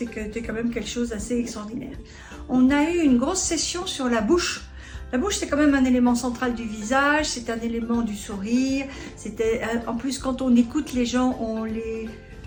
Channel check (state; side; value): identical; both; correlation 1.00